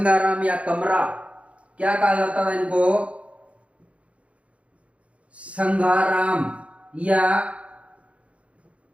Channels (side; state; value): left; late; 0.063 ms